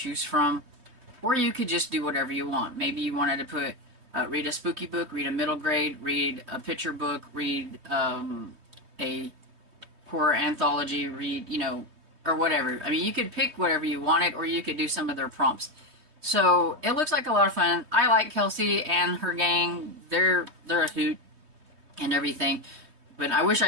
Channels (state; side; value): late; left; 3.2 ms